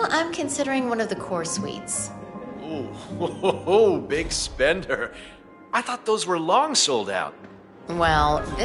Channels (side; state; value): both; identical; correlation 1.00